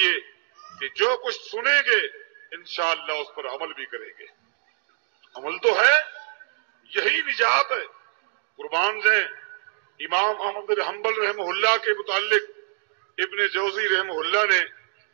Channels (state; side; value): silent; left; digital silence